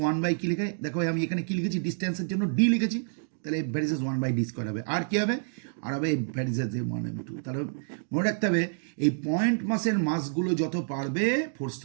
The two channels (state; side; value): silent; left; digital silence